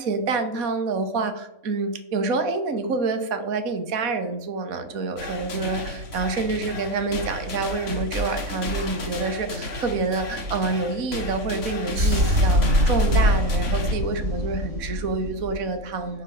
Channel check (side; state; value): left; late; 3.6 ms